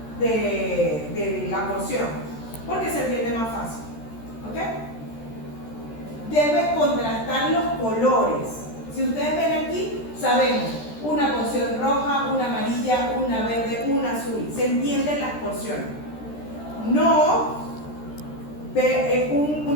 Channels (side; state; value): right; late; 13 ms